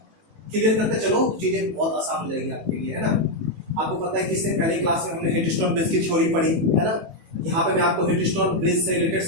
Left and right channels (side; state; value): left; late; 18 ms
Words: क्लियर करते चलो, चीजें बहुत आसान हो जाएगी आपके लिए, है ना। आपको पता है कि इससे पहली क्लास में हमने हिटस्टोन ब्रिज की थ्योरी पढ़ी, है ना, यहाँ पे मैं आपको हिटस्टोन ब्रिज से रिलेटेड